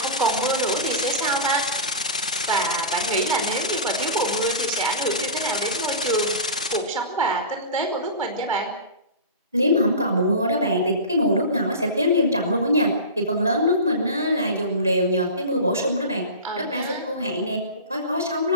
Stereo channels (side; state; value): both; inverted; correlation -0.31